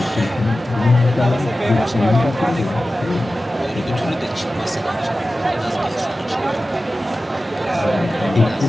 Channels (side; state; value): both; normal; correlation 0.95